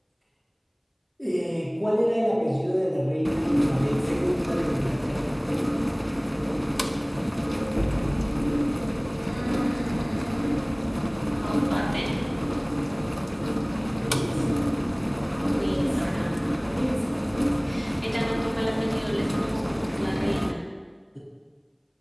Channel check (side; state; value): both; identical; correlation 1.00